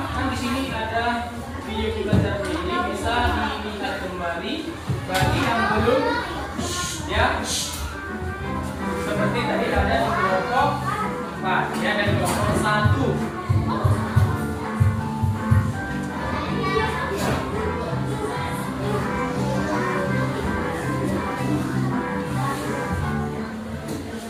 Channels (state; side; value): identical; both; correlation 1.00